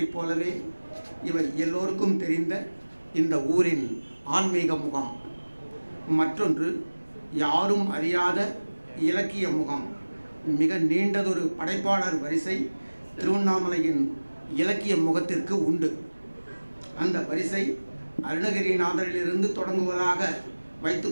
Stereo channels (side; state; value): both; inverted; correlation -1.00